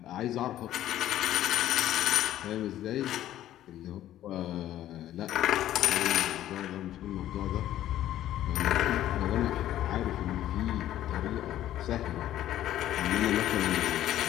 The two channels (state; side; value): quieter; right; 12.9 dB